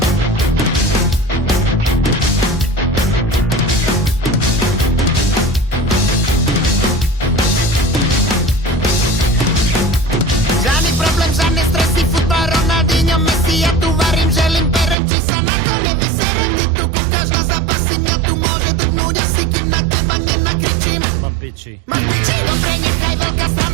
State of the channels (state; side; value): drops out; left; at 15.0 s